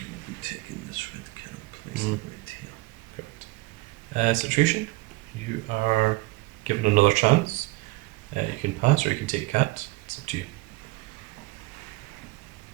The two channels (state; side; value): quieter; left; 22.2 dB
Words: be taking this red cat and place it right here. Correct. Situation, you are given another chance. You can pass or you can take cat. It's up to you.